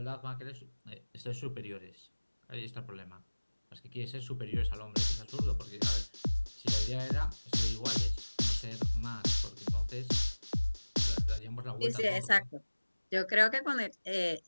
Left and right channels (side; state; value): both; inverted; correlation -1.00